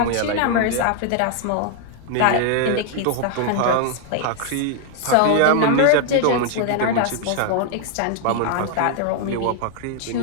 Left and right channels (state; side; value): different; both; correlation 0.00